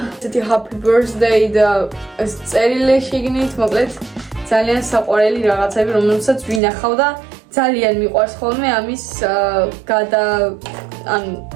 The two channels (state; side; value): drops out; left; at 6.6 s